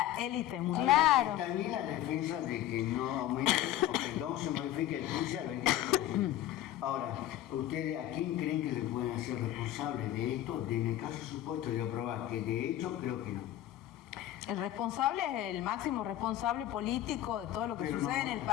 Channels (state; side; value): quieter; right; 13.0 dB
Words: élite mundial. Claro. También la defensa de que no aumente o que no se modifique el precio al 20%. Ahora, ¿ustedes a quién creen que se pueden hacer responsables de esto? En el caso supuesto de aprobar, que de hecho creo que no. El responsable es el máximo responsable político de todo lo que sucede en el